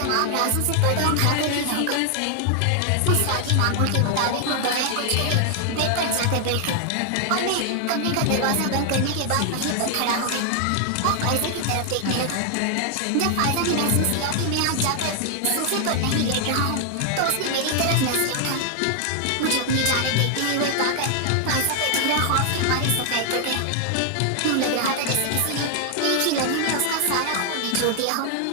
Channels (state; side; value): different; both; correlation 0.00